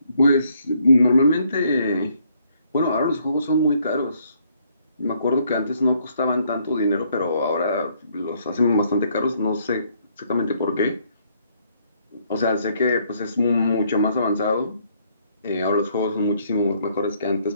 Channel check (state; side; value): inverted; both; correlation -0.68